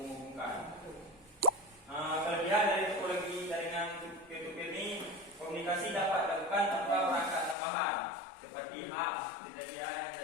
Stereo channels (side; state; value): right; drops out; at 7.6 s